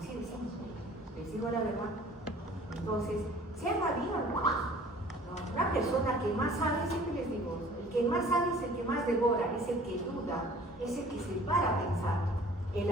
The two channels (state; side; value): normal; both; correlation 0.50